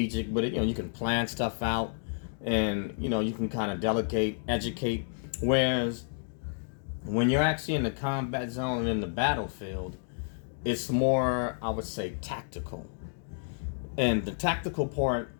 with it. You can plan stuff out, and, you can kind of delegate, educate. Whereas when you're actually in the combat zone and in the battlefield, it's more, I would say, tactical. And the tactical part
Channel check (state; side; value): silent; right; digital silence